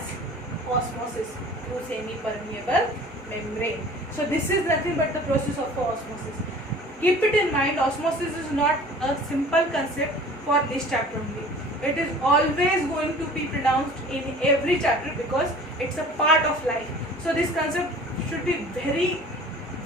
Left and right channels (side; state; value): both; normal; correlation 0.45